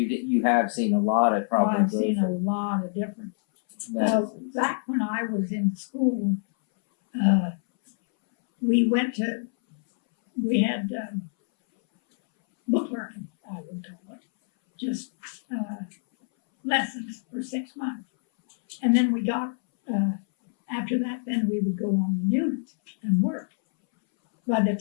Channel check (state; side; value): silent; right; 61 dB below the other